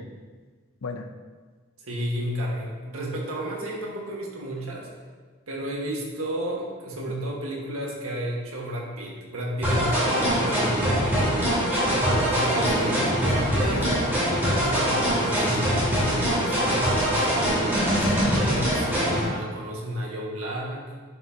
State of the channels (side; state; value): both; normal; correlation 0.38